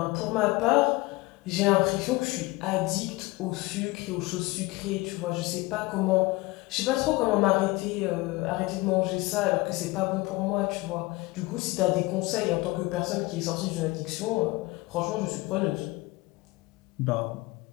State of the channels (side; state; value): right; quieter; 21.8 dB